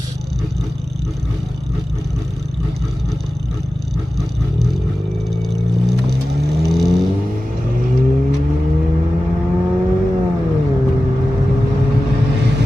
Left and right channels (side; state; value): both; normal; correlation 0.95